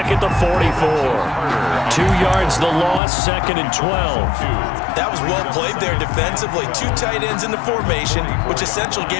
at the 44. 2 yards the loss, 2nd and 12. That was well played there defensively. 2 tight ends in the formation, which essentially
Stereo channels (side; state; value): right; drops out; at 3.0 s